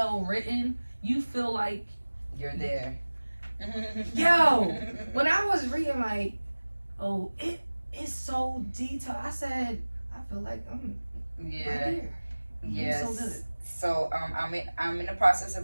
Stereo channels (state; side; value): inverted; both; correlation -1.00